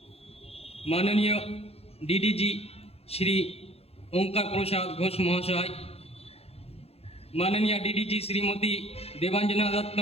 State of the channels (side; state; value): right; late; 0.29 ms